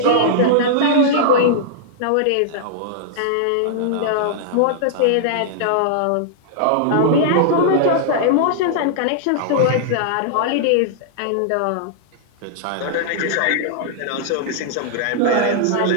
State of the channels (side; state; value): both; different; correlation -0.02